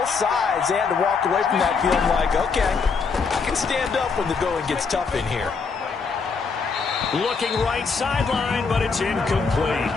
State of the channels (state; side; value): quieter; right; 5.0 dB